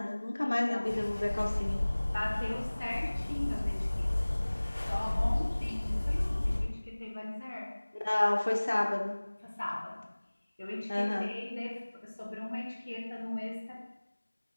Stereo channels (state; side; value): inverted; both; correlation -1.00